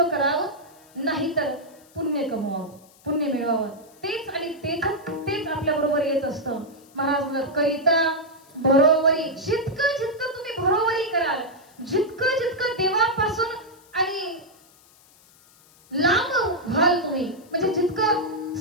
करावं, नाहीतर पुण्य कमवावं, पुण्य मिळवावं. तेच आणि तेच आपल्या बरोबर येत असतं. महाराज म्हणतात करिता बरोबरी, जितकं जितकं तुम्ही बरोबरी कराल, जितकं जितकं देवापासून आणि लांब व्हाल तुम्ही, म्हणजे जितकं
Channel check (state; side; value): noise; left; hiss, 28 dB below the sound